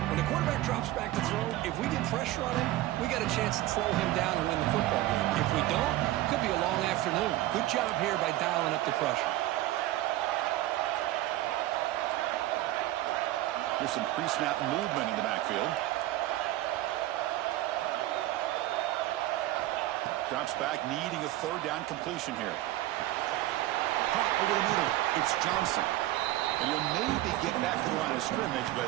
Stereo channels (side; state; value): left; quieter; 15.8 dB